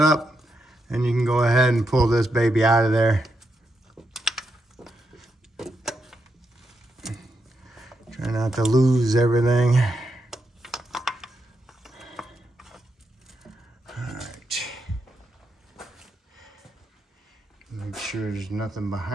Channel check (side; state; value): both; normal; correlation 0.83